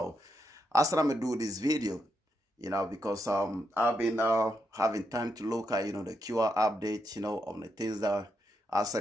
I said I'm gonna do this video, because I've been having time to look at the QR update, on the things that I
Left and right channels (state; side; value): normal; both; correlation 0.82